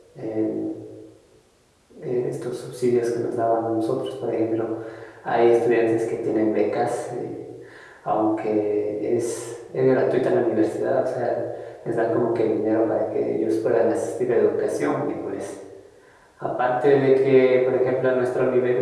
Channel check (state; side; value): identical; both; correlation 1.00